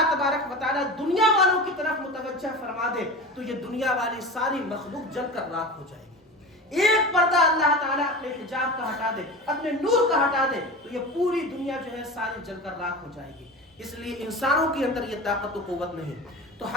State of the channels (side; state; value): both; normal; correlation 0.30